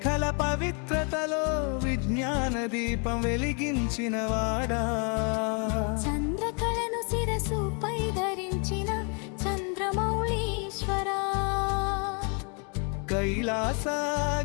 పవిత్రతలో విజ్ఞాన దీపం వెలిగించిన వాడా, చంద్రకళను శిరసుపై ధరించిన చంద్రమౌళీశ్వరా, కైలాస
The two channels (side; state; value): right; quieter; 37.5 dB